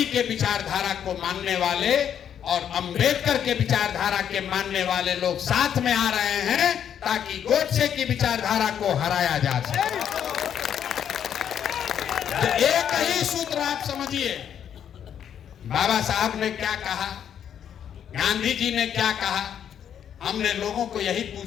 के विचारधारा को मानने वाले और अंबेडकर के विचारधारा के मानने वाले लोग साथ में आ रहे हैं, ताकि गोडसे की विचारधारा को हराया जा सके। तो एक ही सूत्र आप समझिए, बाबा साहब ने क्या कहा, गांधी जी ने क्या कहा। हमने लोगों को यही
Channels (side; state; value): right; quieter; 9.0 dB